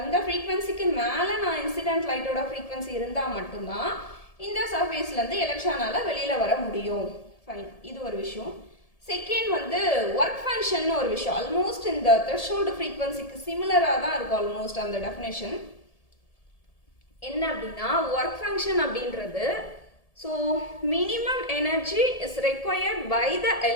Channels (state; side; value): late; right; 1.7 ms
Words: ஃப்ரீக்வன்சிக்கு மேலே நான் இன்சிடென்ட் லைட்டோட ஃப்ரீக்வன்சி இருந்தால் மட்டும்தான் இந்த சர்ஃபேஸ்லேருந்து எலக்ட்ரானால் வெளியில் வர முடியும். ஃபைன், இது ஒரு விஷயம். செகண்ட் வந்து ஒர்க் ஃபங்க்ஷன் ஒரு விஷயம். ஆல்மோஸ்ட் இந்த த்ரெஷோல்டு ஃப்ரீக்வன்சிக்கு சிமிலராக தான் இருக்கும் ஆல்மோஸ்ட் அந்த டெஃபினேஷன். என்ன அப்படின்னா ஒர்க் ஃபங்க்ஷன் அப்படின்றது, so minimum energy is required by the